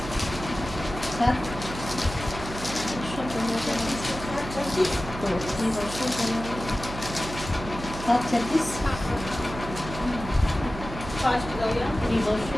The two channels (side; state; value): right; noise; hum, 10 dB below the sound